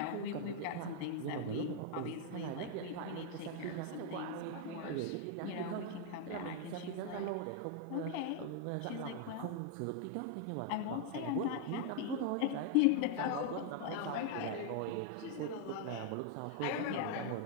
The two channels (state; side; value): different; both; correlation 0.00